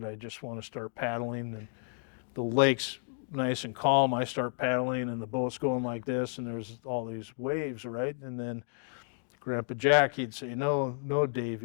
I just want to start paddling. And the lake's nice and calm. I start paddling, and the boat's going like this, and there's all these waves, right? And then Grandpa Jack, he'd say, "No, no,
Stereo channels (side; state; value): right; silent; 57 dB below the other